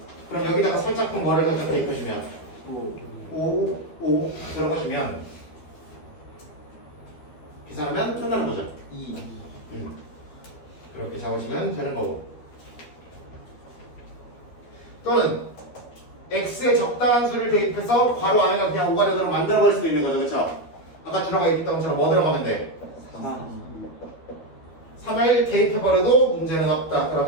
그럼 여기다가 살짝쿵 뭐를 살짝 대입해주면 5 들어가주면 계산하면 끝나는 거죠. 2 그렇게 잡으시면 되는 거고. 또는 x에 적당한 수를 대입해서 괄호 안에가 그냥 5가 되도록 만들어버릴 수도 있는 거죠. 그렇죠? 아까 들어가 있던 것처럼 뭐 들어가면 돼? 3을 대입해버려도 문제는 없다.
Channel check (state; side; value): late; right; 12 ms